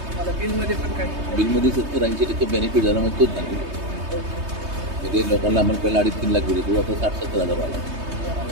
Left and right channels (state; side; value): late; left; 3.2 ms